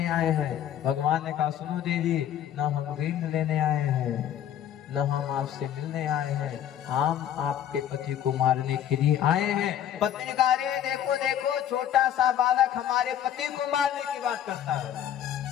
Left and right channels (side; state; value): right; quieter; 10.4 dB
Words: आए हैं। भगवान ने कहा, सुनो देवी, न हम गेंद लेने आए हैं, न हम आपसे मिलने आए हैं, हम आपके पति को मारने के लिए आए हैं। पत्नी ने कहा, अरे देखो देखो, छोटा सा बालक हमारे पति को मारने की बात करता है।